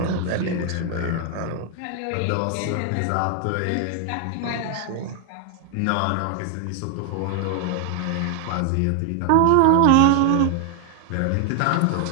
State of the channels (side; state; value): both; different; correlation 0.00